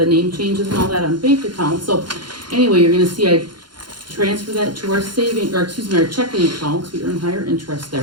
name changes and all that on bank accounts. So anyway, you're gonna see I transfer that to our our checking accounts. We earn higher interest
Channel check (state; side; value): late; left; 0.71 ms